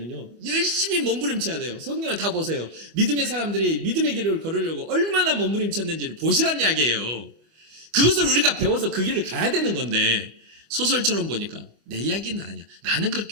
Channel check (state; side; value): late; left; 25 ms